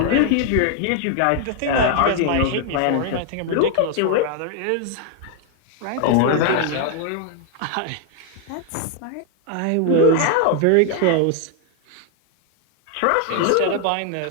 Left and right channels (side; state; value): both; different; correlation 0.00